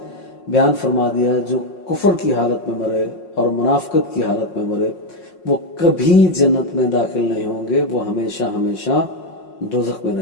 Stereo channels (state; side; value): late; right; 5.5 ms